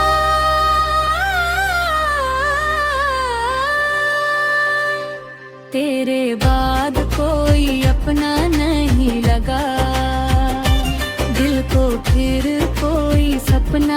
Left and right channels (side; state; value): both; identical; correlation 1.00